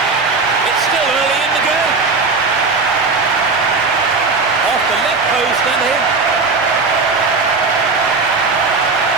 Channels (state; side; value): quieter; left; 4.2 dB